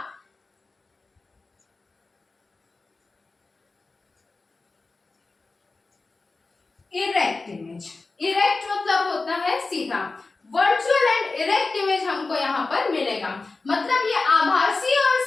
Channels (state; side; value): quieter; right; 3.7 dB